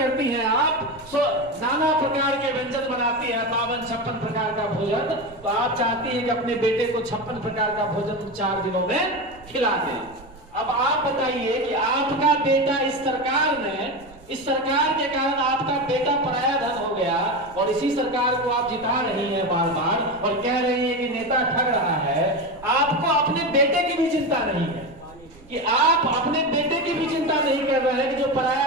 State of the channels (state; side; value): noise; right; rumble, 23 dB below the sound